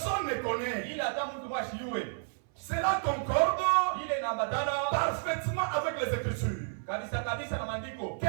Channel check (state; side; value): silent; left; 57 dB below the other